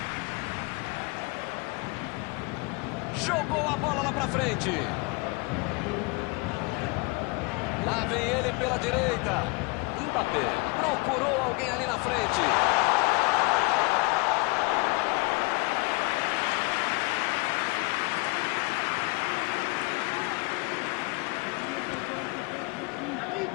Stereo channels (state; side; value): quieter; right; 27.4 dB